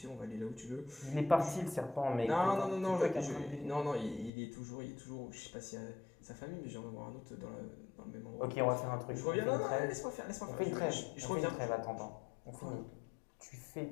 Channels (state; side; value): drops out; right; at 4.3 s